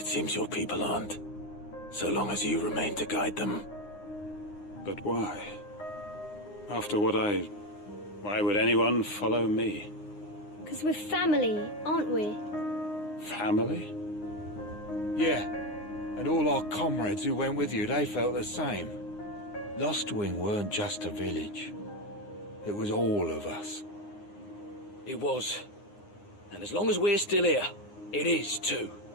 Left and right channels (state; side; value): late; right; 9.7 ms